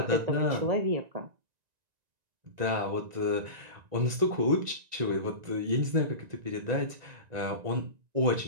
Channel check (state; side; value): late; left; 1.9 ms